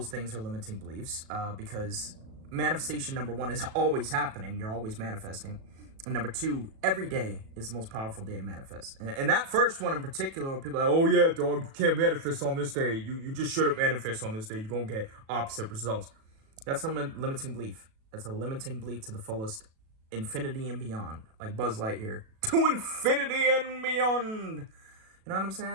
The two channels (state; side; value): late; left; 37 ms